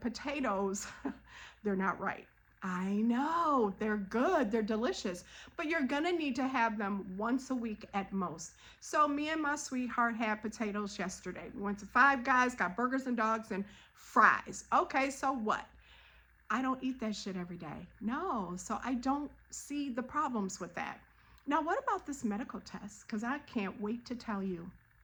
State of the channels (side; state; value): both; identical; correlation 1.00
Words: they're not right. I know, they're good, they're delicious, but you're gonna need to have them once a week at most. So me and my sweetheart had potatoes yesterday. We went to Five Guys, got burgers and dogs and fries. Okay, so what? I don't eat that shit every day. No, so I don't see the problems with that. Now, what about this medical test? Because I can't wait to tell you.